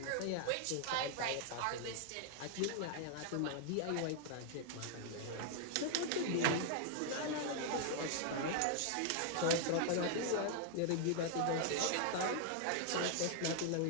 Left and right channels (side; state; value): both; different; correlation 0.00